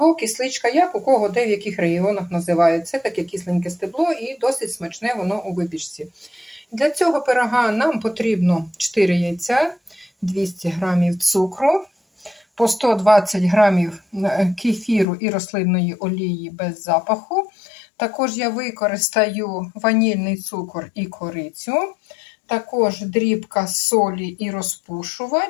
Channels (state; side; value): drops out; right; at 15.1 s